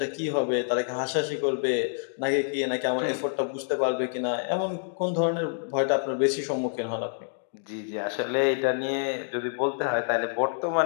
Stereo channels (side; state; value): right; silent; digital silence